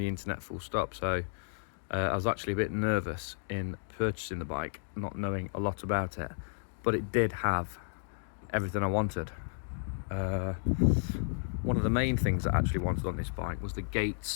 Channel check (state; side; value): silent; right; digital silence